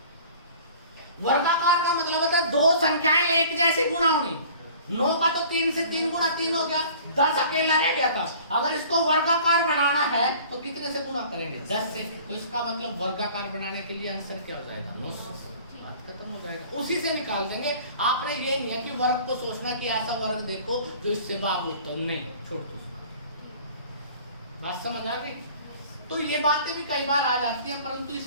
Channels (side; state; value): both; inverted; correlation -0.48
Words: वर्गाकार का मतलब होता है दो संख्याएं एक जैसी गुणा होनी। 9 का तो 3 से 3 गुणा 3 हो गया, 10 अकेला रह गया था। अगर इसको वर्गाकार बनाना है तो कितने से गुणा करेंगे, 10 से। तो इसका मतलब वर्गाकार बनाने के लिए आंसर क्या हो जाएगा, 900। बात खत्म हो जाएगा, उसी से निकाल देंगे। आपने ये नहीं है कि वर्ग को सोचना कि ऐसा वर्ग देखो जो इससे भाग होता है, नहीं, छोड़ दो। बात समझ आ गई। तो ये बातें भी कई बार आ जाती हैं, परंतु